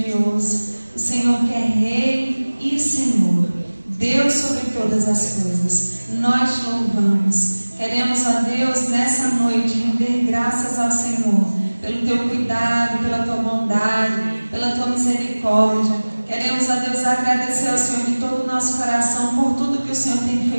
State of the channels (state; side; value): inverted; both; correlation -1.00